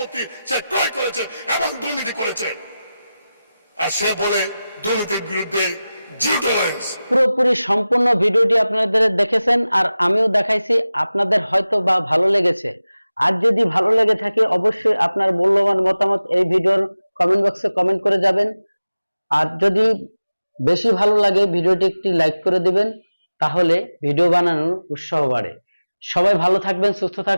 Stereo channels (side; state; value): both; inverted; correlation -0.96